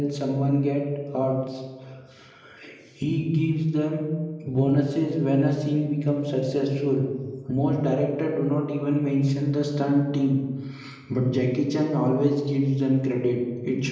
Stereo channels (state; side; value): identical; both; correlation 1.00